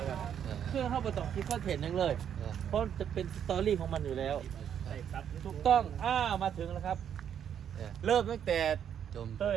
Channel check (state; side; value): quieter; left; 8.9 dB